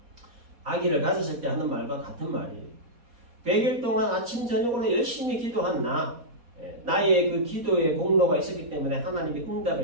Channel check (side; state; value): left; late; 4.2 ms